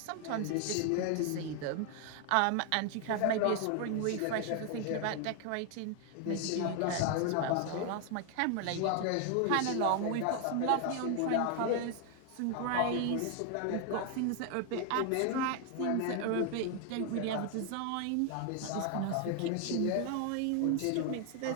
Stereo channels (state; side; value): different; both; correlation 0.00